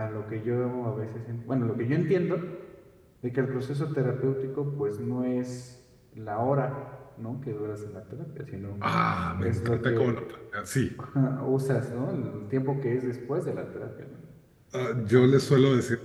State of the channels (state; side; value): identical; both; correlation 1.00